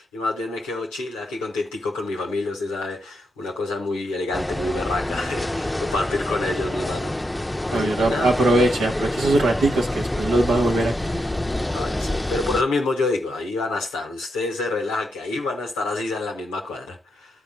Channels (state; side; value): normal; both; correlation 0.83